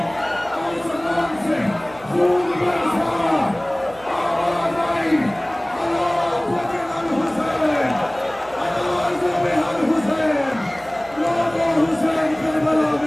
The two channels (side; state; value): right; noise; hum, 23 dB below the sound